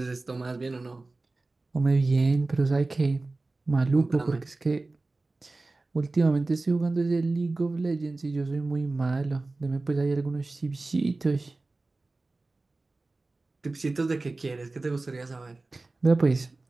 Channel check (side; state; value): left; quieter; 3.3 dB